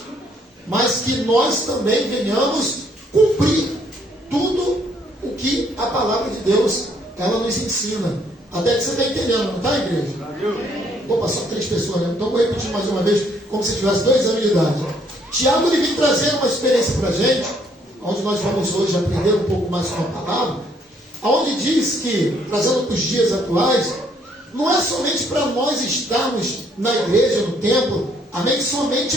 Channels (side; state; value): both; normal; correlation 0.67